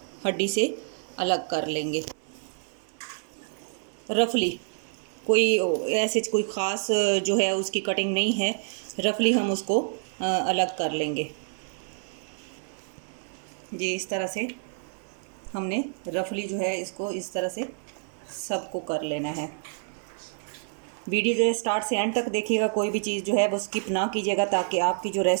हड्डी से अलग कर लेंगे। रफली कोई ऐसे कोई ख़ास जो है उसकी कटिंग नहीं है, रफली हम उसको अलग कर लेंगे जी। इस तरह से हमने रफली जो है इसको इस तरह से सबको कर लेना है। वीडियो जो है स्टार्ट से एंड तक देखिएगा, कोई भी चीज़ जो है वो स्किप ना कीजिएगा ताकि आपकी जो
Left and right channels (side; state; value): left; silent; 59 dB below the other